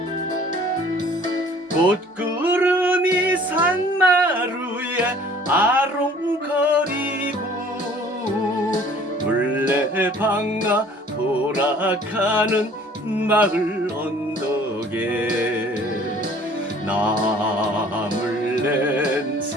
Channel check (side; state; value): both; normal; correlation 0.52